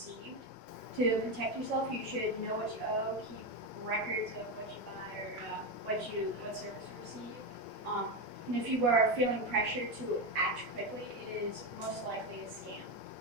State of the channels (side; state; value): left; late; 4.7 ms